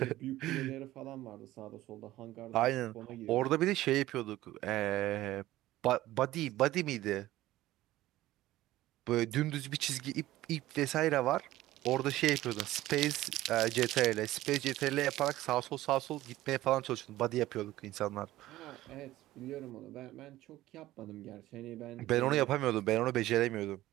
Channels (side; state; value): left; quieter; 15.8 dB